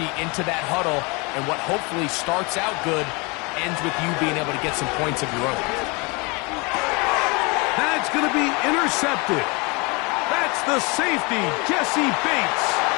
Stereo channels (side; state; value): right; quieter; 28.2 dB